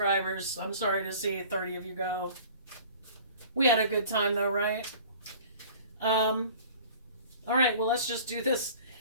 I'm sorry to see 30 of you go. We had a good time though, right? All right, well, let's just do this.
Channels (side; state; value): both; inverted; correlation -0.46